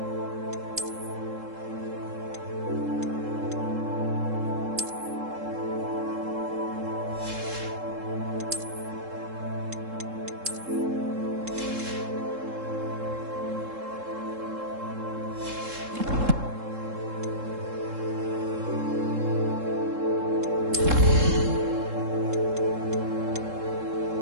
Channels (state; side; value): late; left; 3.7 ms